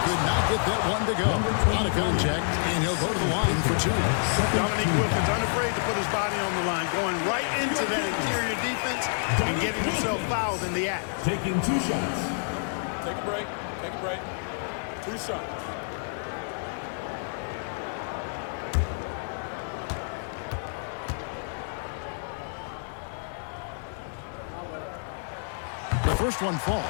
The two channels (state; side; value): silent; right; digital silence